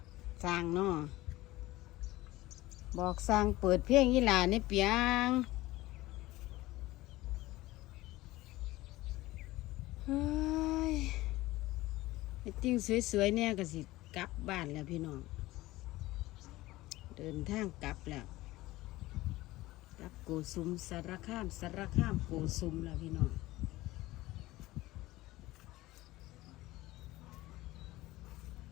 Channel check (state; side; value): quieter; right; 18.1 dB